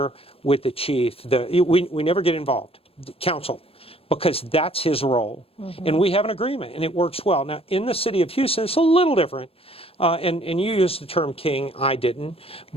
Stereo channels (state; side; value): late; right; 0.28 ms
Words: with the chief. We never get involved, the council, because that's his role. And we have an agreement and it works well. Now, in the city of Houston, it's a little different. And you used the term king, I didn't.